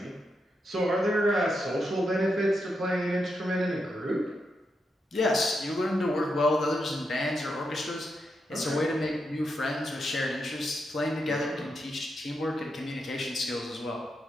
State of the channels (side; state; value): both; normal; correlation 0.84